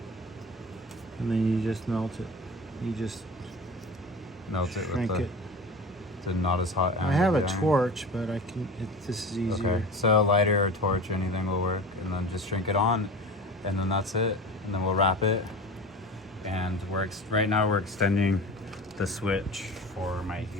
And then you just melt it. You just melt it with shrink the, it. the not as hot end. I have of a the iron. torch, but this is easier. Okay, so a lighter or torch or anything will work, and then just shrink it on, and then that's it. And then we'll wrap it, and right now we're extending the switch for my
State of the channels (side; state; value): both; normal; correlation 0.34